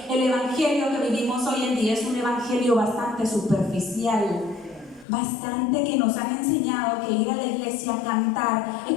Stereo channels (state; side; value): drops out; right; at 5.1 s